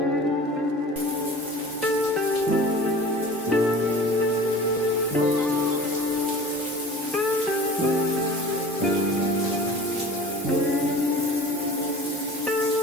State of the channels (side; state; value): both; normal; correlation 0.40